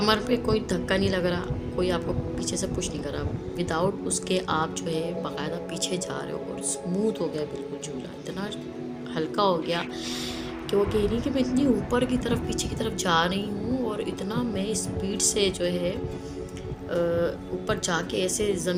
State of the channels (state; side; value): identical; both; correlation 1.00